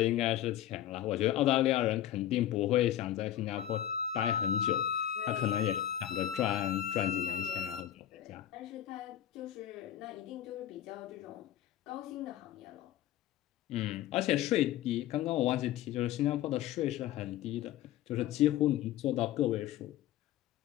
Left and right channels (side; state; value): right; quieter; 11.9 dB